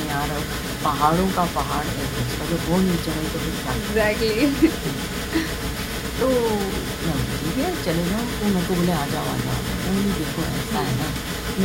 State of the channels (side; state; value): both; identical; correlation 1.00